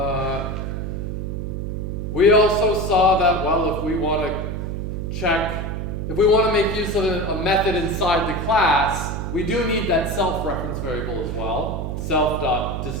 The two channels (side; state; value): right; noise; hum, 4 dB below the sound